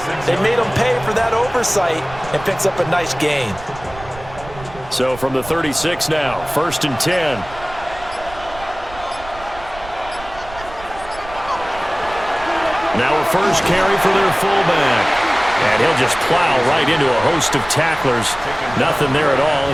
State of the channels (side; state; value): right; noise; rumble, 17 dB below the sound